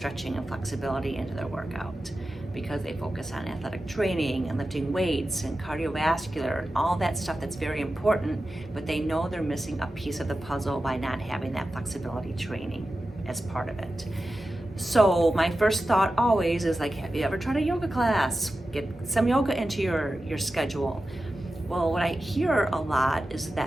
and flexibility into their workout because they focus on athletic training and lifting weights and cardiovascular and all that stuff that's very important, but they know they're missing a piece of the puzzle by not having that flexibility training as part of it. So my first thought always is like, have you ever tried a yoga class? Get some yoga into your schedule. Well, what I hear a lot is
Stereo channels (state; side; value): normal; both; correlation 0.93